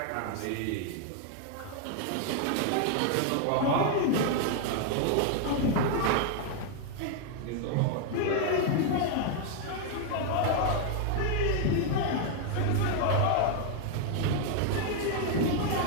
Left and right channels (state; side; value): different; both; correlation 0.00